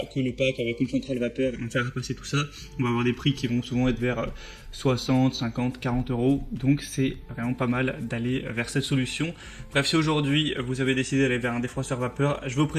que le pack avec une centrale vapeur et on faire repasser tout ça. On va avoir des prix qui vont souvent être vers 60, 50, 40 euros. Donc c'est vraiment pas mal d'aller vers cette solution. Bref, si aujourd'hui vous avez décidé d'aller vers un défroisseur vapeur, je vais vous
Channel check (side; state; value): both; identical; correlation 1.00